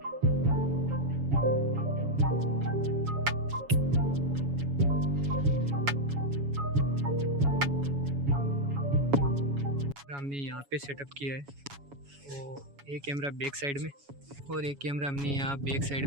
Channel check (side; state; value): left; late; 7.1 ms